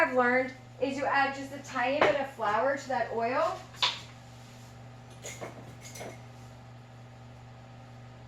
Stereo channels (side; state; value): both; identical; correlation 1.00